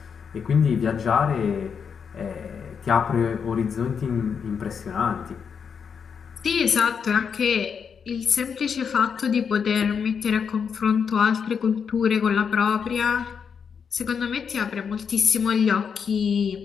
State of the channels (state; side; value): quieter; right; 6.6 dB